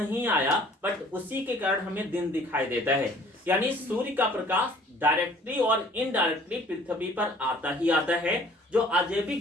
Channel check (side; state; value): both; normal; correlation 0.54